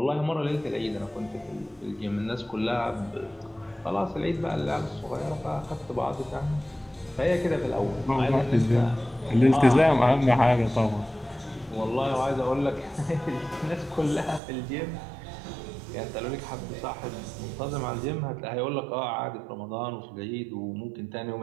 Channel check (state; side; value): drops out; left; at 14.4 s